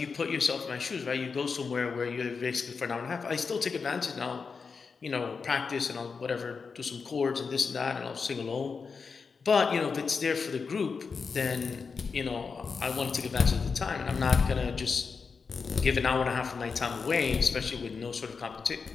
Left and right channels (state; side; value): quieter; right; 5.2 dB